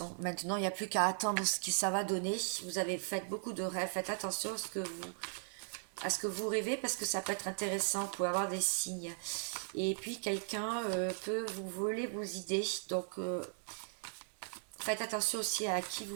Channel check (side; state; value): left; silent; 53 dB below the other